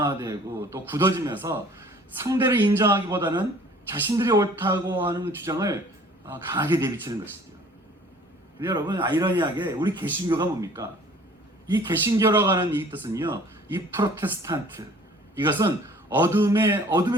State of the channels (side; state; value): both; normal; correlation 0.52